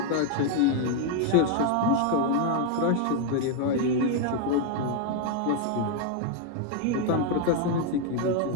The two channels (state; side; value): different; both; correlation 0.01